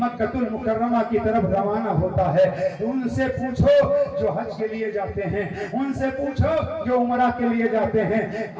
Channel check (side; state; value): both; identical; correlation 1.00